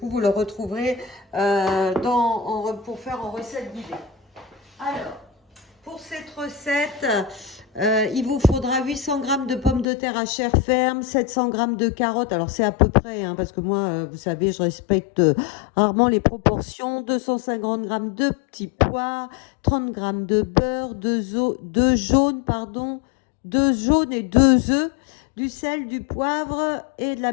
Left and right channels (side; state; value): right; drops out; at 9.9 s